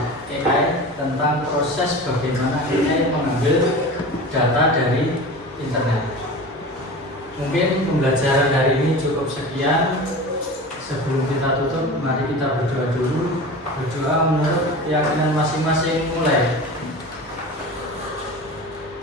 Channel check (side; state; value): both; normal; correlation 0.33